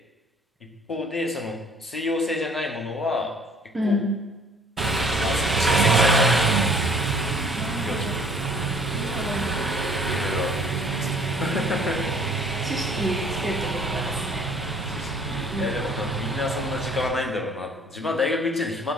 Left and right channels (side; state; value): both; normal; correlation 0.55